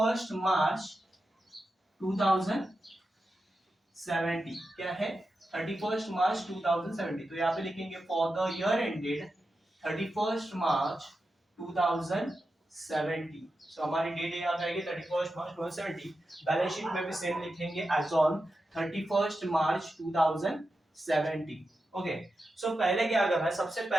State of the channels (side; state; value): both; normal; correlation 0.90